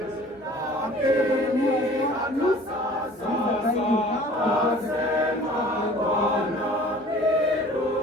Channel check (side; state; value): both; normal; correlation 0.48